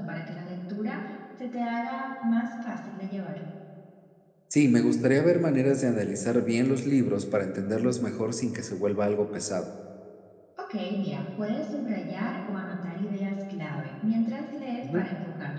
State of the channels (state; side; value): identical; both; correlation 1.00